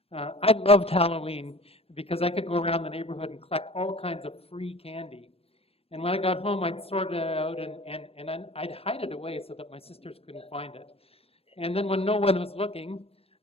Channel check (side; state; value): right; late; 0.28 ms